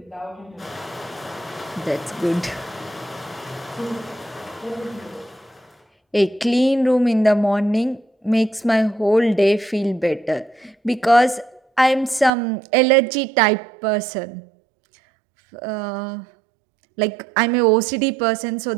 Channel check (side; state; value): left; drops out; at 12.3 s